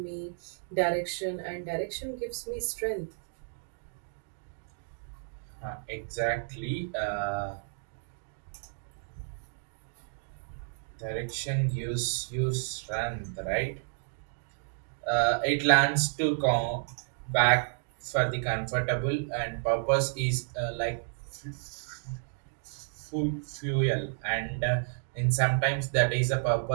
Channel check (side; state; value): left; silent; digital silence